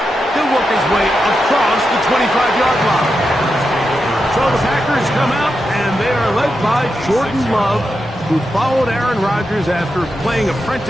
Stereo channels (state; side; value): normal; both; correlation 0.87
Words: He'll work his way across the 25-yard line. So the Packers come out, and they are led by Jordan Love, who followed Aaron Rodgers after playing